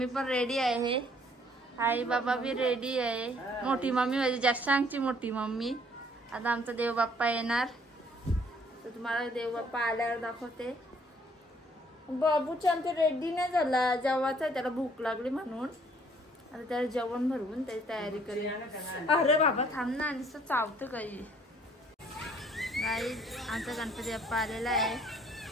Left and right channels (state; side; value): normal; both; correlation 0.61